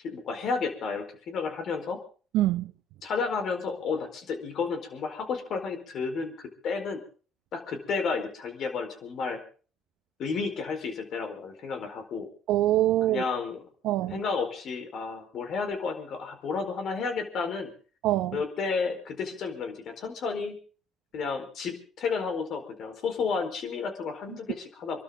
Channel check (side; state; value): both; normal; correlation 0.54